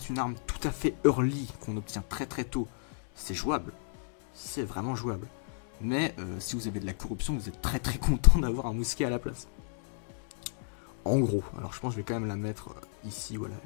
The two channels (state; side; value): silent; right; digital silence